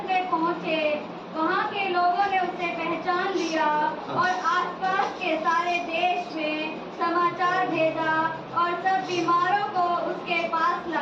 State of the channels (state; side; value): identical; both; correlation 1.00